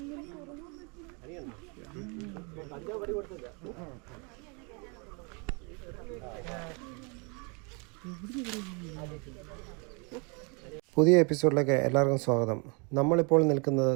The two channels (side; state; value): left; quieter; 33.0 dB